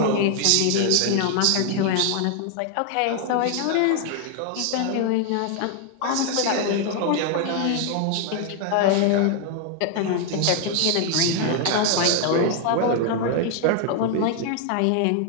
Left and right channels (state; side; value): different; both; correlation 0.00